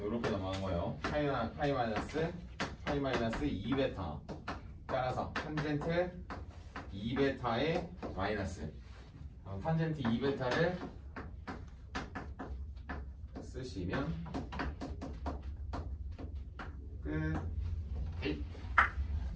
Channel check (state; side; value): identical; both; correlation 1.00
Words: 이렇게 넘어간 거예요. 파이 마이너스 2베타 따라서 탄젠트 2베타의 마이너스 탄젠트 2베타를 쓰시면 끝.